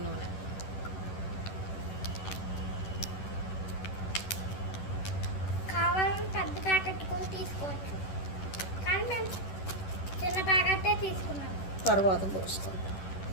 నూనె. కావాలని పెద్ద ప్యాకెట్ కూడా తీసుకోవచ్చు, కానీ మేము చిన్న ప్యాకెటే తీసుకున్నాము. తర్వాత పోసుకుంటాం.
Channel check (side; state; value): right; late; 11 ms